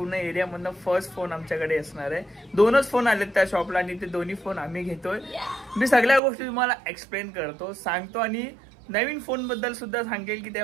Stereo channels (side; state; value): left; drops out; at 6.2 s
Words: एरिया मधनं फर्स्ट फोन आमच्याकडे असणार आहे. 2च फोन आलेत त्या शॉपला आणि ते दोन्ही फोन आम्ही घेतोय. मी सगळ्या गोष्टी तुम्हाला एक्सप्लेन करतो, सांगतो आणि नवीन फोन बद्दल सुद्धा सांगेल की